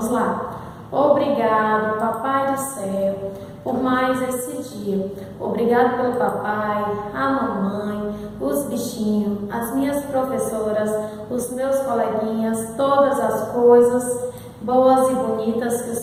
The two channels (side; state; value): both; identical; correlation 1.00